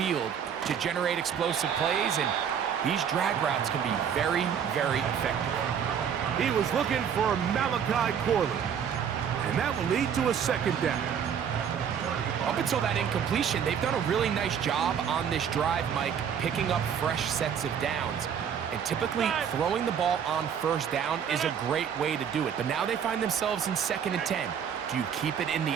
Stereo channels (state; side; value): quieter; left; 8.0 dB